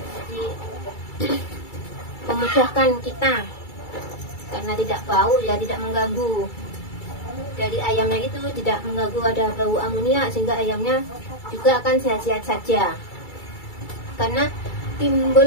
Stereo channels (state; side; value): late; right; 2.3 ms